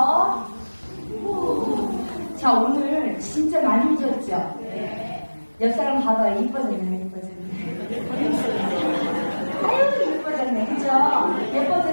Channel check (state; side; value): inverted; both; correlation -1.00